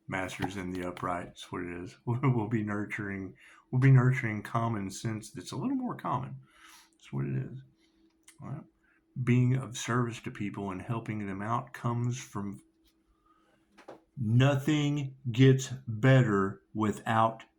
Masters in the upright. That's what it is. We'll be nurturing common sense that's a little more common. That's what it is. All right. Being of service to people and helping them out comes from nothing gets better without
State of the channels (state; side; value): identical; both; correlation 1.00